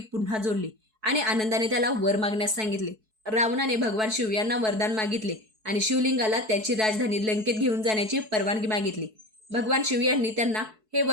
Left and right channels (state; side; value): late; left; 4.6 ms